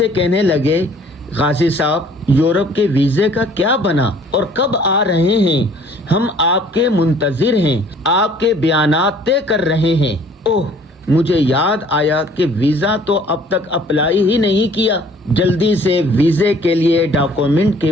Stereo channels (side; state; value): both; normal; correlation 0.55